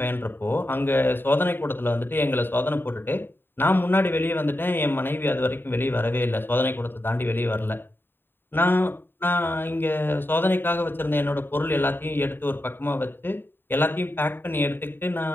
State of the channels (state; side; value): late; right; 0.098 ms